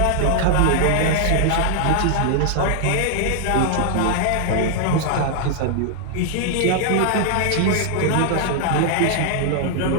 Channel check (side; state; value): both; different; correlation -0.01